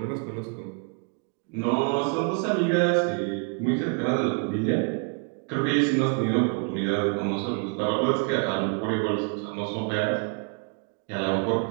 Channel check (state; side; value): quieter; left; 38.3 dB